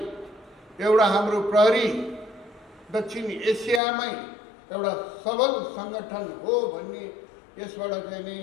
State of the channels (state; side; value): drops out; right; at 3.8 s